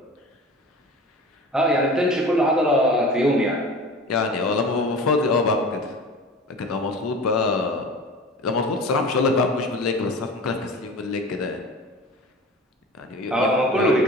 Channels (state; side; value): normal; both; correlation 0.37